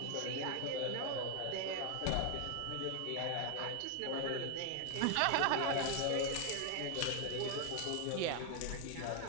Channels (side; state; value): both; different; correlation 0.01